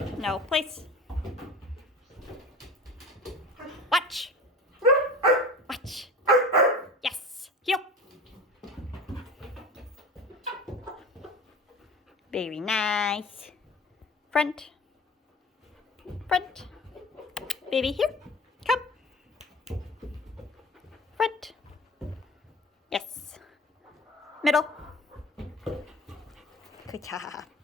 No, place. Watch. Watch. Yes. Heel. Very nice. Front. Front. Baby, here. Come. Front. Yes. Middle. Good job.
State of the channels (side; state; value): both; normal; correlation 0.37